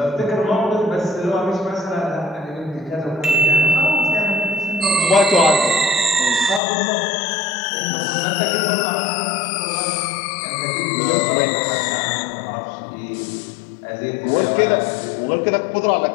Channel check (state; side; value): drops out; right; at 6.6 s